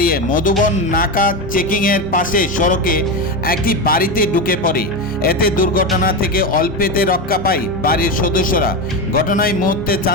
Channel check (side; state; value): both; normal; correlation 0.15